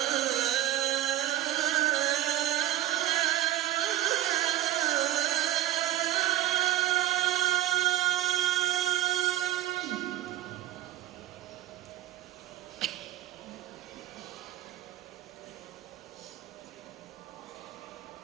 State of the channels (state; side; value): quieter; left; 14.4 dB